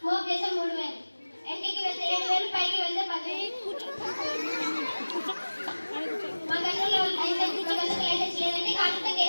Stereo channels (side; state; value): both; inverted; correlation -1.00